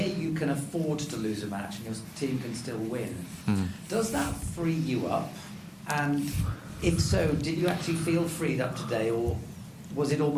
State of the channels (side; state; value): both; identical; correlation 1.00